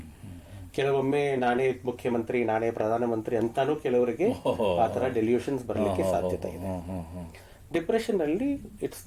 ಕೆಲವೊಮ್ಮೆ ನಾನೇ ಮುಖ್ಯಮಂತ್ರಿ, ನಾನೇ ಪ್ರಧಾನಮಂತ್ರಿ ಅಂತಾನೂ ಕೆಲವರಿಗೆ ಆ ತರ ಡೆಲ್ಯೂಷನ್ಸ್ ಬರ್ಲಿಕ್ಕೆ ಸಾಧ್ಯತೆ ಇದೆ. ಡಿಪ್ರೆಷನ್ ಅಲ್ಲಿ ಇಟ್ಸ್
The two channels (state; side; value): identical; both; correlation 1.00